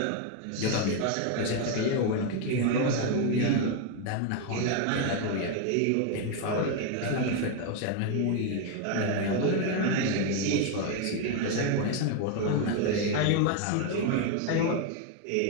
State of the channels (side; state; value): both; different; correlation 0.01